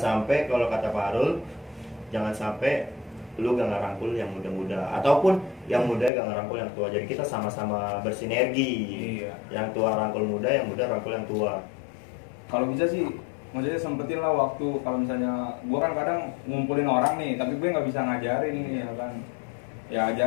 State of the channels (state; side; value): drops out; right; at 6.1 s